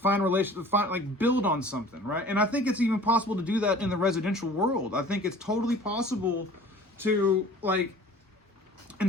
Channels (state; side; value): normal; both; correlation 0.46